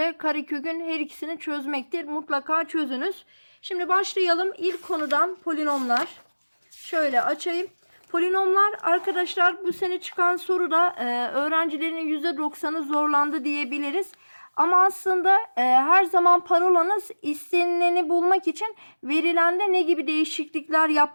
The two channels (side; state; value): both; inverted; correlation -1.00